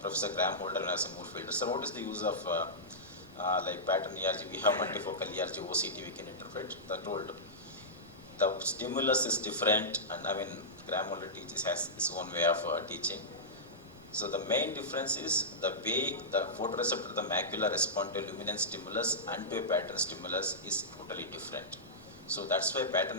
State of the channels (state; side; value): normal; both; correlation -0.13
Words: Professor Graham Holder when I was a Moorfielder. So what is the use of pattern ERG? We have multifocal ERG, OCT we can interpret. I told the stimulus is different, and Graham Holder has his own way of teaching. So the main difference is the way the photoreceptor, the macula, respond to luminance stimulus and to a pattern stimulus is totally different. So that's why